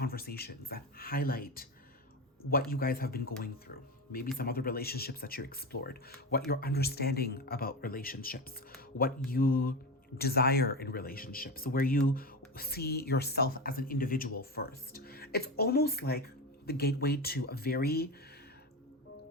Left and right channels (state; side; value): normal; both; correlation 0.20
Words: that highlight what you guys have been going through. Maybe some other relationships that you explored. What you're understanding about relationships. What you desire in relationships, where you see yourself as an individual first. It's almost like the gateway to a very,